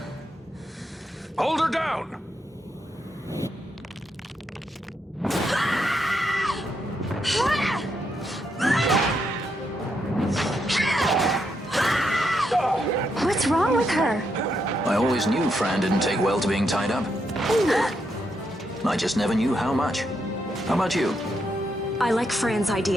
Hold her down! What's wrong with her? I always knew Fran didn't take well to being tied up. I just never knew how much. How about you? I like Fran's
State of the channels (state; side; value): normal; both; correlation 0.80